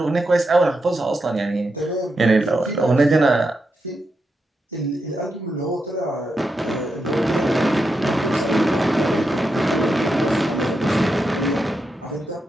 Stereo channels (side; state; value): both; normal; correlation 0.86